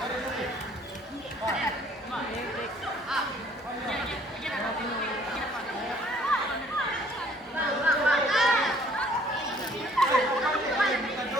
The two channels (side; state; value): both; normal; correlation 0.59